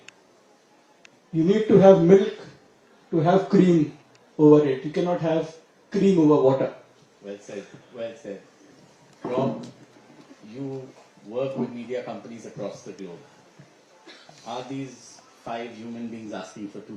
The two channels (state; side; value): identical; both; correlation 1.00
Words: You need to have milk to have cream over it. You cannot have cream over water. Well said, well said. Rob, you work with media companies across the globe. Are these 5 human beings asking for too